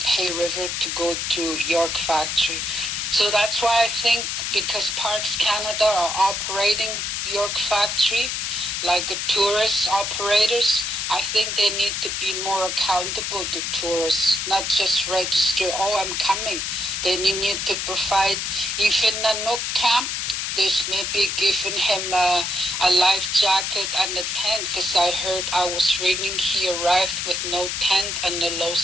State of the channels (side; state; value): left; noise; hiss, 2 dB below the sound